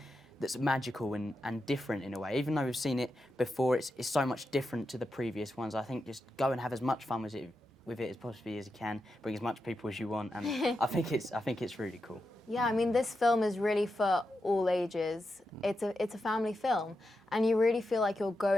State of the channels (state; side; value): normal; both; correlation 0.88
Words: that's magical and different in a way. Even though we've seen it before, it's so much different to the previous ones. I think just go and have as much fun with it as possibly as you can. Bring as much people as you want, and I think it's really cool. Yeah, I mean, this film is really for all ages. It's a family film, and you really feel like you're